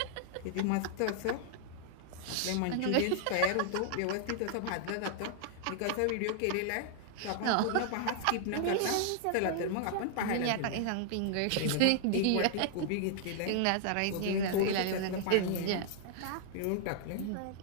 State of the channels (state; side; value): different; both; correlation -0.01